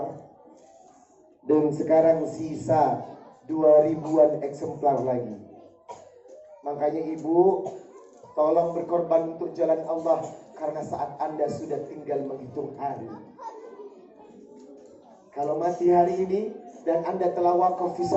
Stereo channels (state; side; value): identical; both; correlation 1.00